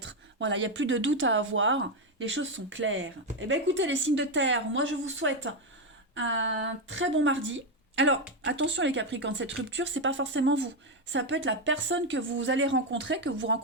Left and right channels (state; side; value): normal; both; correlation 0.07